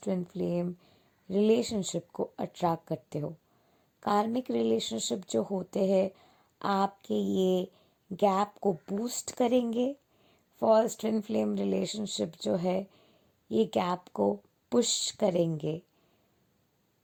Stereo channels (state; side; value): identical; both; correlation 1.00